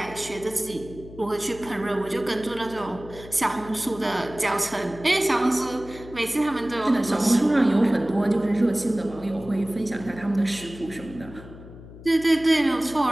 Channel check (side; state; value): left; noise; hum, 17 dB below the sound